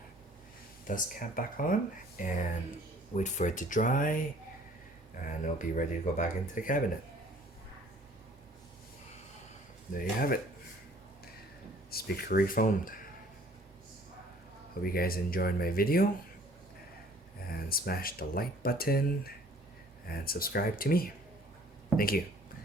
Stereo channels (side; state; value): both; normal; correlation 0.55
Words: dust cap back on and wait for it to dry, and it'll be ready to go back into the cabinet. There you have it. Speaker refoamed. Hope you guys enjoyed my video, and smash the like button and subscribe to me. Thank you.